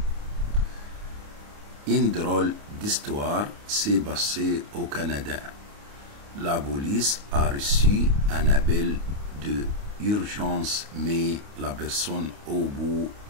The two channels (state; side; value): late; left; 29 ms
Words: Une drôle d'histoire s'est passée au Canada. La police a reçu un appel de urgence, mais la personne au bout